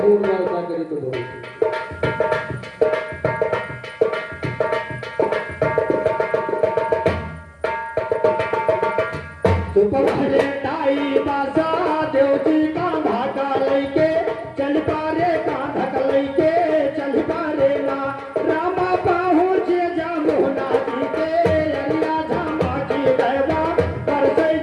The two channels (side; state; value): both; identical; correlation 1.00